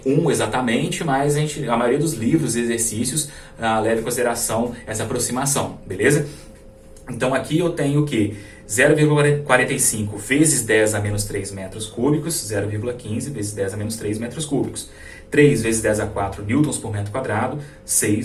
1 exatamente, mas a maioria dos livros e exercícios leva em consideração essa aproximação, beleza? Então, aqui eu tenho o quê? 0,45 vezes 10 a menos 3 metros cúbicos, 0,15 vezes 10 a menos 3 metros cúbicos. 3 vezes 10 a 4 newtons por metro quadrado,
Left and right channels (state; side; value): identical; both; correlation 1.00